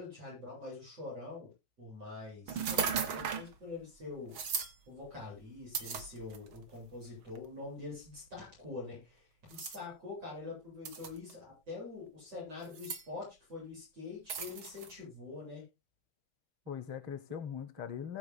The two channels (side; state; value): left; late; 6.4 ms